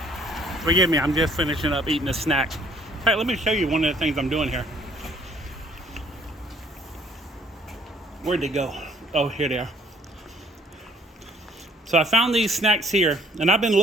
forgive me, I'm just finishing up eating a snack. Hey, let me show you one of the things I'm doing here. Where'd they go? Oh, here they are. So I found these snacks here, and I've been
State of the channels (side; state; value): both; normal; correlation 0.61